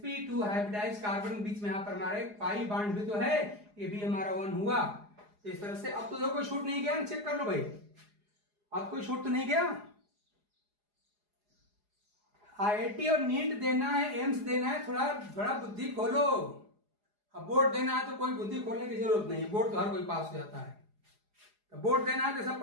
hybridised carbon के बीच में यहाँ पर हमारा एक पाई बांड भी तो है, ये भी हमारा 1 हुआ। तो इस तरह से अब तो देखो कोई छूट नहीं गया, चेक कर लो भाई, अब कोई छूट तो नहीं गया। IIT और नीट देना है, एम्स देना है, थोड़ा बुद्धि खोलो। अब बोर्ड देना है तो कोई बुद्धि खोलने की जरूरत नहीं है, बोर्ड तो हर कोई पास हो जाता है। तो बोर्ड देना है तो सब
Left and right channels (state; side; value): late; left; 4.8 ms